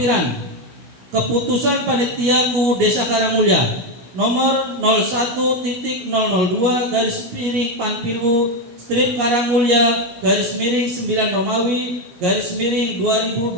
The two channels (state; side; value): late; left; 17 ms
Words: keputusan Panitia KUU Desa Karangmulya nomor 01.002 garis miring Panpilwu strip Karangmulya garis miring 9 Romawi garis miring